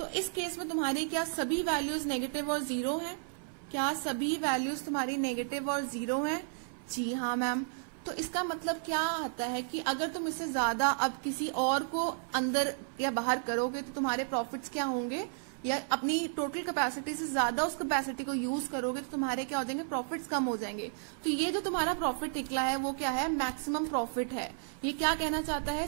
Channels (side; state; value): left; silent; 56 dB below the other